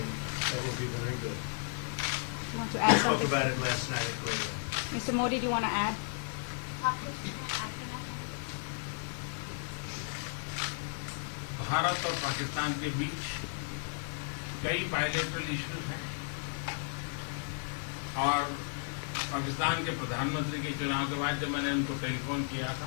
that will be very good. You want to We add spoke something? about it last night at Korea. Mr. Modi, do you want to add? Bharat और पाकिस्तान के बीच कई bilateral issues हैं और पाकिस्तान के प्रधानमंत्री के चुनाव के बाद जब मैंने उनको टेलीफोन किया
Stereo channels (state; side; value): silent; right; 55 dB below the other